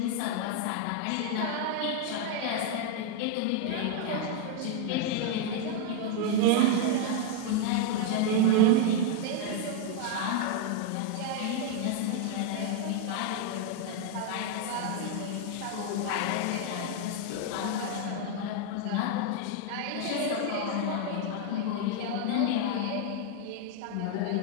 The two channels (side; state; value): both; different; correlation 0.00